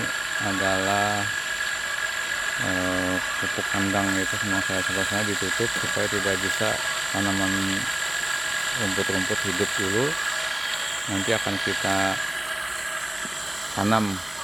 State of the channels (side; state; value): right; noise; hum, 29 dB below the sound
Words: adalah pupuk kandang, itu semua saya ditutup supaya tidak bisa tanaman rumput-rumput hidup dulu. Nanti akan kita tanam